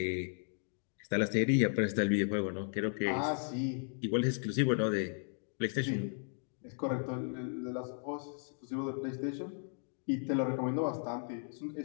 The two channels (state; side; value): silent; right; 54 dB below the other